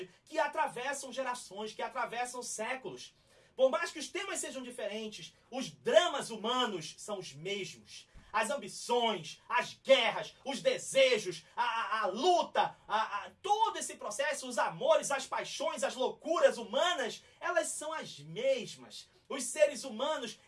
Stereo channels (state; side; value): identical; both; correlation 1.00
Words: que atravessam gerações, que atravessam séculos. Por mais que os temas sejam diferentes, os dramas humanos são os mesmos. As ambições, as guerras, os desejos, a luta, todo esse processo, os amores, as paixões, as loucuras humanas, elas são as mesmas. Os seres humanos,